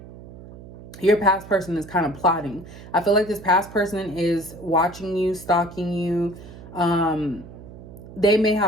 your past person is kind of plotting. I feel like this past person is watching you, stalking you. They may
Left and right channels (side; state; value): right; noise; hum, 16 dB below the sound